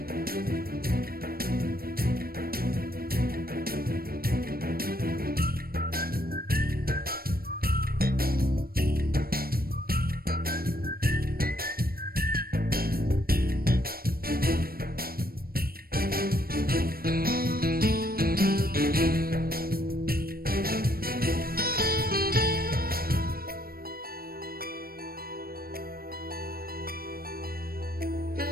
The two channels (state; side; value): late; left; 0.44 ms